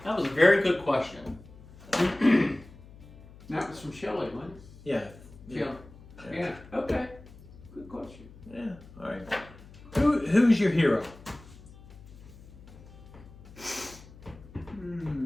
That was a very good question. That was from Shelley, wasn't it? yeah. Shelley. Yeah. Okay. Good question. Yeah, all right. Who's your hero?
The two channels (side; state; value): left; noise; hum, 20 dB below the sound